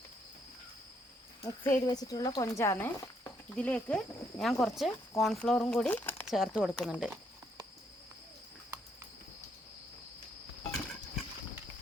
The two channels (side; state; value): both; normal; correlation 0.72